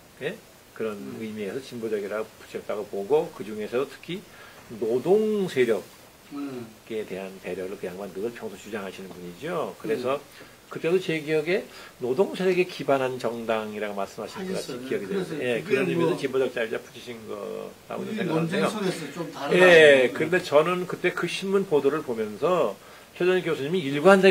예? 그런 의미에서 진보적이라고 붙였다고 보고 그 중에서도 특히 노동 세력에 대한 배려를 그 양반 늘 평소 주장하시는 분이죠. 그래서 그때도 제 기억에 노동 세력에 기반한 정당이라고 말씀하신 것 같이 기억이 되는데 예, 그런 의미에서 진보적 자유주의 붙이신 거라고 생각하는데요. 예, 그런데 저는 그때 그 신문 보도를 보면서 최전희 교수님이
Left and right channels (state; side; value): identical; both; correlation 1.00